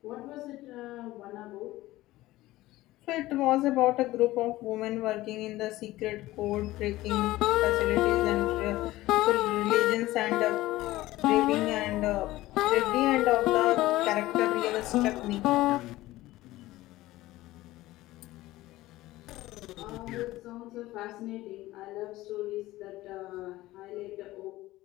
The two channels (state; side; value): quieter; right; 17.2 dB